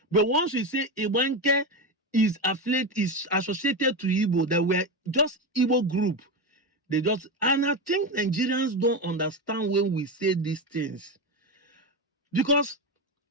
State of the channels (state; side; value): normal; both; correlation 0.16